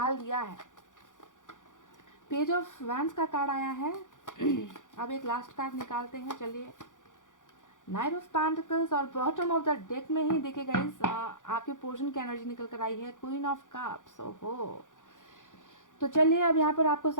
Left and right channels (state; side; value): late; right; 0.87 ms